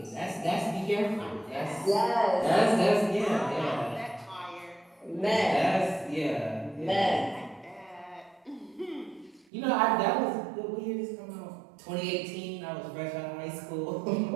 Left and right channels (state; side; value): drops out; left; at 9.5 s